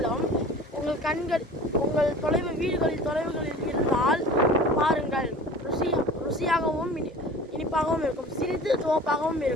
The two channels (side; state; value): both; normal; correlation 0.41